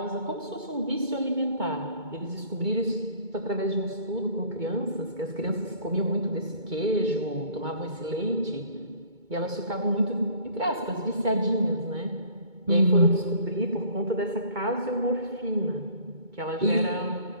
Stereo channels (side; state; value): left; late; 2.2 ms